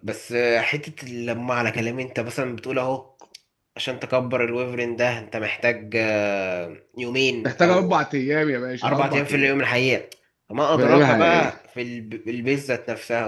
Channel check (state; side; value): identical; both; correlation 1.00